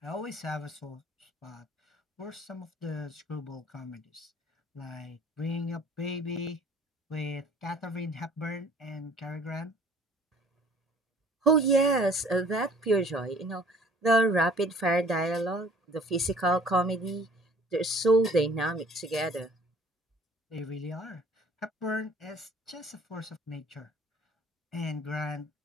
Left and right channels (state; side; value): normal; both; correlation 0.53